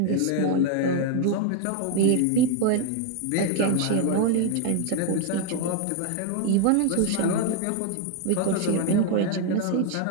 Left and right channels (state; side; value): different; both; correlation 0.01